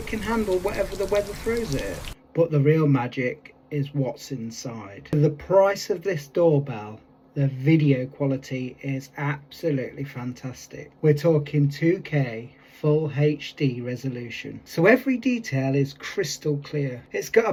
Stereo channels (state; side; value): identical; both; correlation 1.00